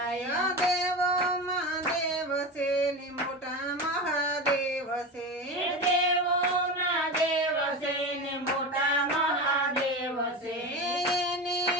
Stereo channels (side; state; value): both; normal; correlation 0.24